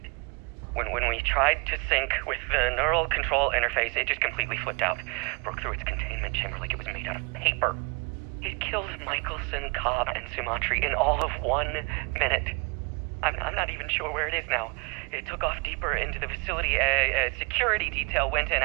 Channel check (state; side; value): quieter; left; 32.0 dB